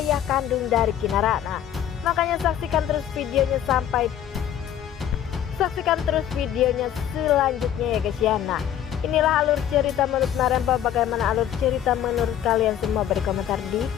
kandung dari Kinara. Nah, makanya saksikan terus videonya selanjutnya ya guys ya. Nah, inilah alur cerita menurut Marempong. Bagaimana alur cerita menurut kalian semua? Beri komentar di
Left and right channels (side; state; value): right; quieter; 10.4 dB